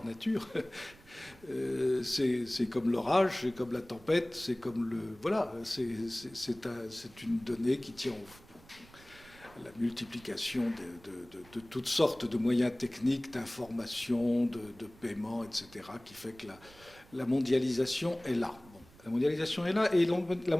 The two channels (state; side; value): noise; right; rumble, 24 dB below the sound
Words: nature. C'est comme l'orage, c'est comme la tempête, c'est comme le... Voilà, c'est une donnée qui tient à la multiplication de toutes sortes de moyens techniques, d'information, de paiement, etc., qui fait que la mondialisation est là. La mondialisation est là et la